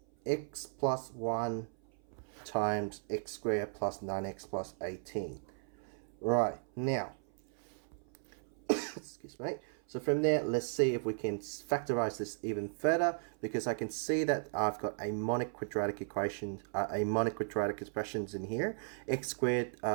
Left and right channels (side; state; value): left; silent; 54 dB below the other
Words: x plus 1 times x squared plus 9x plus 18. Right, now, excuse me. So from there, let's see if we can factorize this even further, because I can see that I've got a monic quadratic equation, expressions in here, x squared